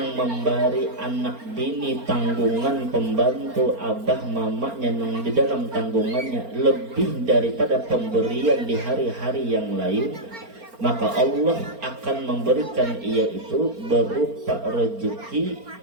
memberi anak bini tanggungan pembantu abah mamanya nang di dalam tanggungannya lebih daripada pemberian di hari-hari yang lain, maka Allah akan memberikan ia itu berupa rezeki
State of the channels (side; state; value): left; late; 4.4 ms